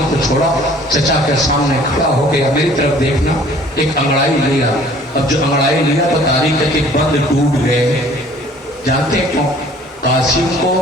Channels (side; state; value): both; normal; correlation 0.53